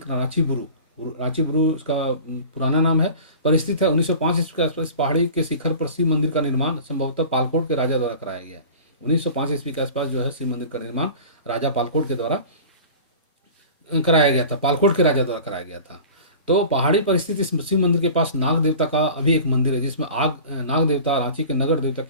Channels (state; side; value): inverted; both; correlation -0.38